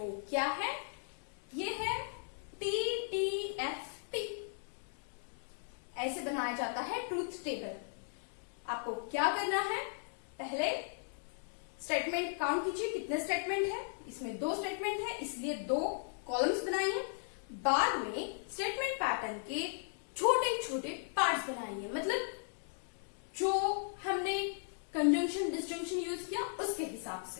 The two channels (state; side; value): silent; right; digital silence